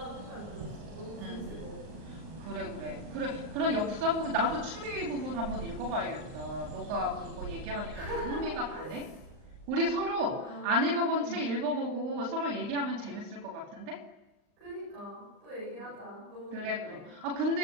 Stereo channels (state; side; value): late; left; 38 ms